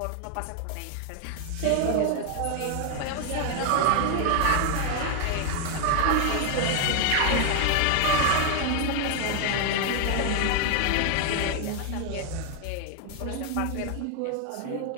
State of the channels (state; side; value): different; both; correlation 0.01